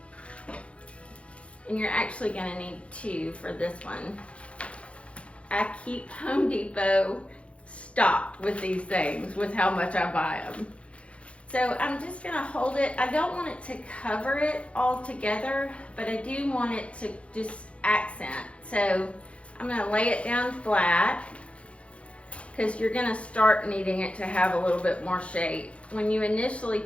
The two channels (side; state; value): right; late; 0.061 ms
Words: And you're actually gonna need 2 for this one. I keep Home Depot stocked with these things, with how much I buy them. So I'm just gonna hold it. I don't want it to cover it all together, but I do want it to just accent. So I'm gonna lay it down flat, because you're gonna start needing it to have a little bit more shape. When you initially